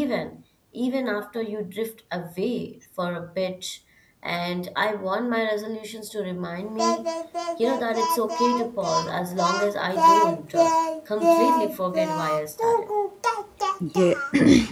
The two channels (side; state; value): both; identical; correlation 1.00